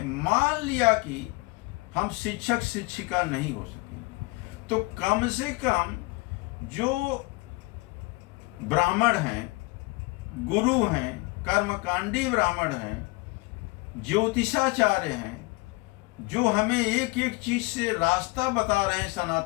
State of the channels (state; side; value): quieter; right; 24.8 dB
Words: मान लिया कि हम शिक्षक शिक्षिका नहीं हो सके, तो कम से कम जो ब्राह्मण हैं, गुरु हैं, कर्मकांडी ब्राह्मण हैं, ज्योतिषाचार्य हैं, जो हमें एक एक चीज से रास्ता बता रहे हैं